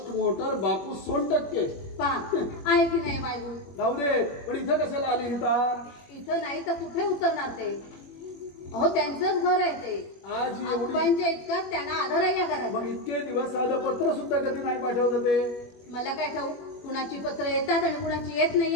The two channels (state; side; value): late; right; 21 ms